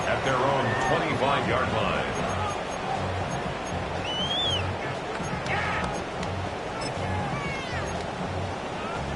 At their own 25-yard line.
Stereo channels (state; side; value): identical; both; correlation 1.00